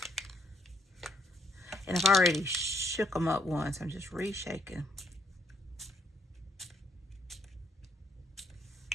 And I've already shook them up once. I'm just reshaking.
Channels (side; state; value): both; normal; correlation 0.70